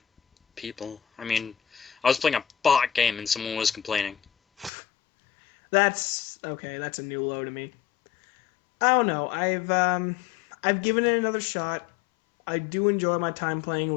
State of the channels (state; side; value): drops out; right; at 4.7 s